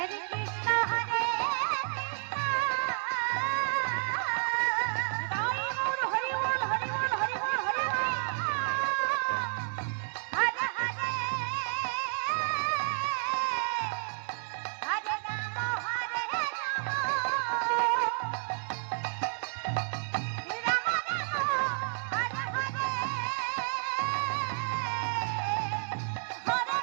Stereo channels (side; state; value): left; silent; 57 dB below the other